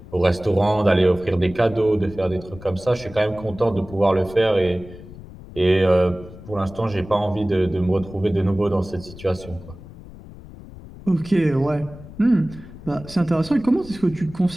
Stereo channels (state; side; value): noise; left; rumble, 17 dB below the sound